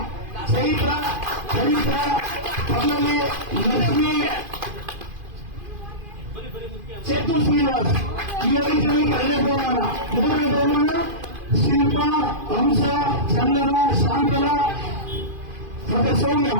ಚೈತ್ರ, ಪಲ್ಲವಿ, ಲಕ್ಷ್ಮಿ, ಚೇತು ಶ್ರೀನಿವಾಸ್ ಈ 5 ಜನಕ್ಕೆ 2ನೇ ಬಹುಮಾನ. 3ನೇ ಬಹುಮಾನ ಶಿಲ್ಪ, ಹಂಸ, ಚಂದನ, ಶಾಂತಲ ಮತ್ತೆ ಸೌಮ್ಯ.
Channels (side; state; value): left; late; 2.5 ms